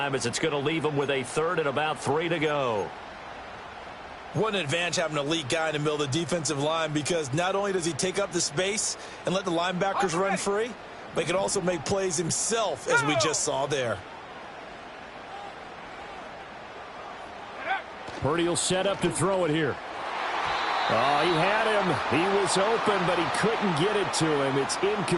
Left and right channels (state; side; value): identical; both; correlation 1.00